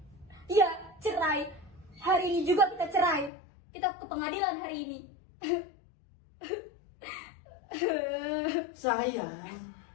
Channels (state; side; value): drops out; right; at 3.3 s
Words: Ya, cerai. Hari ini juga kita cerai. Kita ke pengadilan hari ini. Sayang,